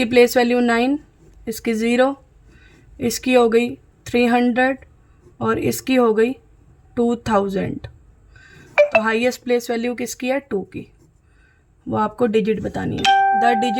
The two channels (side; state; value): both; identical; correlation 1.00